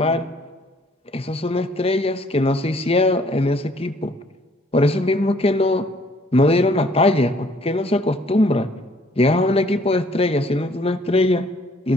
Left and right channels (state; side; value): normal; both; correlation 0.61